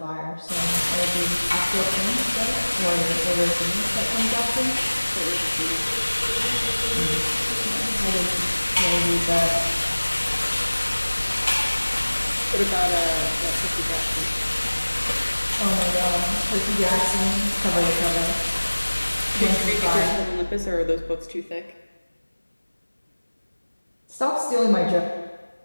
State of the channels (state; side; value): inverted; both; correlation -1.00